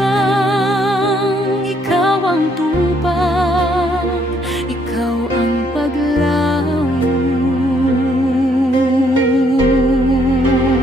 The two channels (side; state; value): both; normal; correlation 0.69